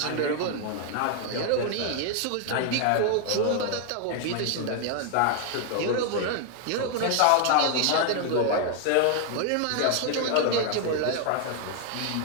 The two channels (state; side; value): different; both; correlation 0.00